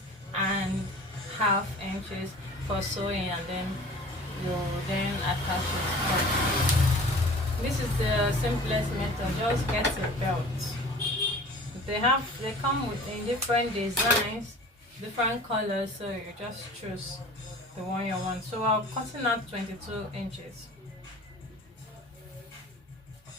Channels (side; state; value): both; normal; correlation 0.43